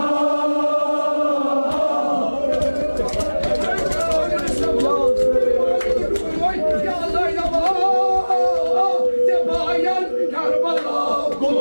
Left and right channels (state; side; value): inverted; both; correlation -1.00